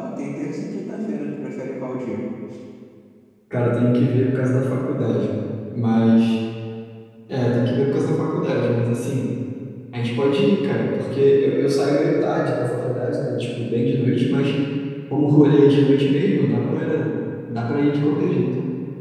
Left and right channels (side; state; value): both; identical; correlation 1.00